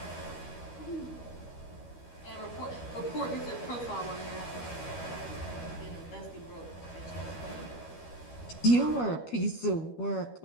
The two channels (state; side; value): late; right; 12 ms